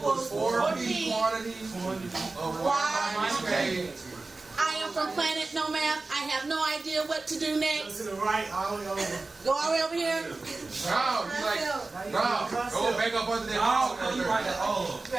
4p quantity of y minus k. I am from planet no math. I have no idea what to do Go next. to the right, all the way over. Go all the way over here. No, go back up under that wall. You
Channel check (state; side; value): quieter; left; 3.5 dB